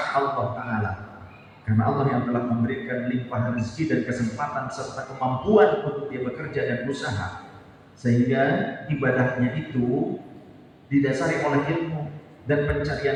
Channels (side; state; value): both; identical; correlation 1.00